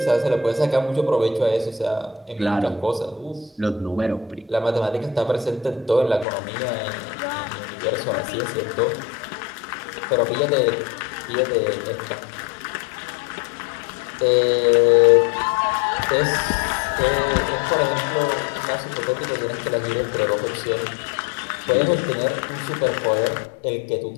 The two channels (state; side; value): drops out; right; at 6.2 s